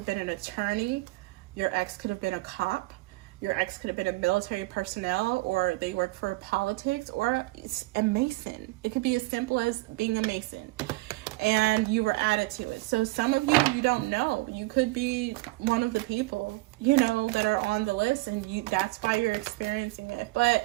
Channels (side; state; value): left; quieter; 22.0 dB